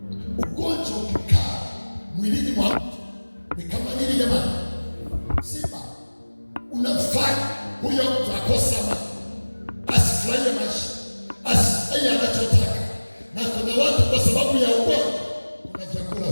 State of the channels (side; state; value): both; inverted; correlation -1.00